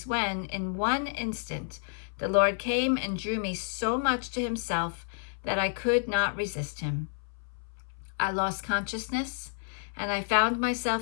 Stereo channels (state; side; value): silent; right; 58 dB below the other